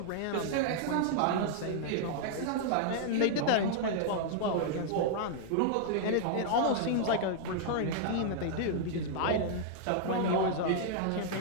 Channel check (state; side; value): different; both; correlation -0.01